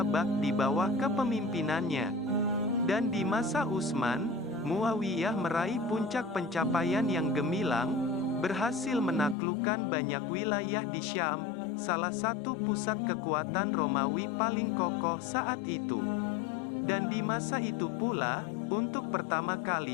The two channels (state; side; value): drops out; right; at 9.3 s